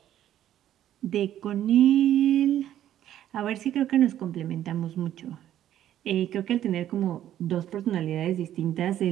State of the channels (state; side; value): quieter; left; 11.7 dB